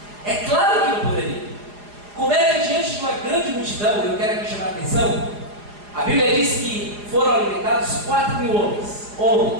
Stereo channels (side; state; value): left; late; 4.9 ms